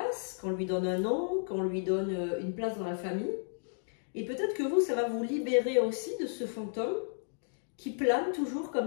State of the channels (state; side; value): silent; right; digital silence